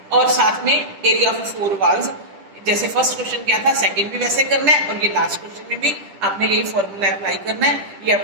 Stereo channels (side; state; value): left; late; 10 ms